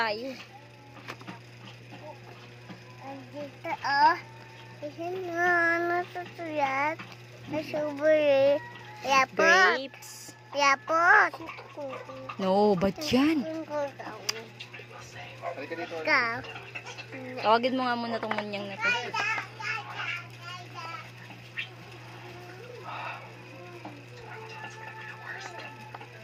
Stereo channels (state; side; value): identical; both; correlation 1.00